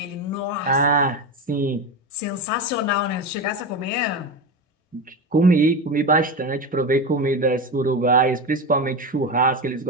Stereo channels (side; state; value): both; normal; correlation 0.20